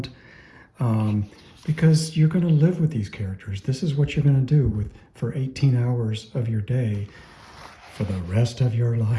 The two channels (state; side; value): identical; both; correlation 1.00